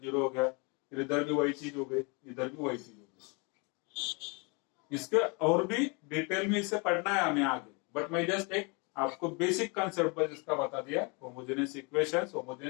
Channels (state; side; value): quieter; right; 31.0 dB